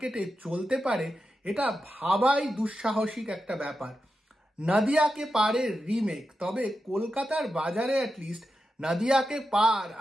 চলতে পারে এটা ভাবাই দুঃসাহসিক একটা ব্যাপার। নদিয়াকে পারের রিমেক, তবে কলকাতার বাজারে অ্যাটলিস্ট নদিয়াকে পার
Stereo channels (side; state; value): both; normal; correlation 0.89